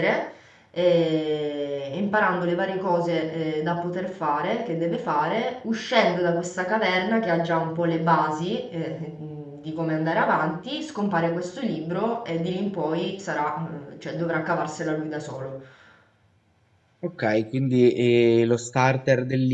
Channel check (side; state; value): both; identical; correlation 1.00